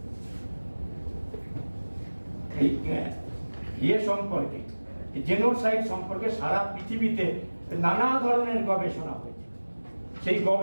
সম্পর্কে, জেনোসাইড সম্পর্কে সারা পৃথিবীতে নানা ধরনের গবেষণা হয়েছে। সেই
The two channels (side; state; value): both; inverted; correlation -1.00